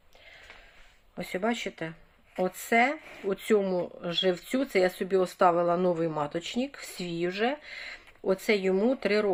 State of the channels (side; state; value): both; identical; correlation 1.00